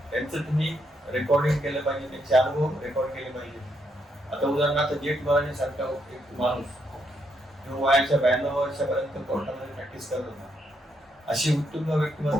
त्यांचं तुम्ही रेकॉर्डिंग केलं पाहिजे, त्यांचे अनुभव रेकॉर्ड केले पाहिजे. आता उदाहरणार्थ जेठ मराठी सारखा एक माणूस जो वयाच्या 92 वर्षापर्यंत कोर्टामध्ये प्रॅक्टिस करत होता, अशी उत्तुंग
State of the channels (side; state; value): both; normal; correlation 0.77